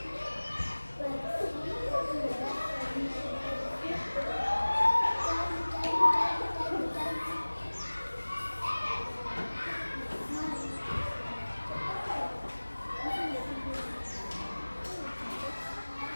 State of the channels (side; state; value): both; inverted; correlation -1.00